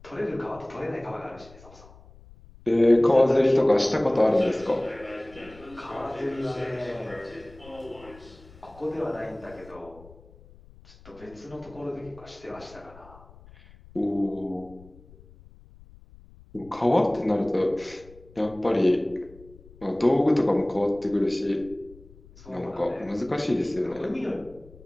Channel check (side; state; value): left; noise; rumble, 23 dB below the sound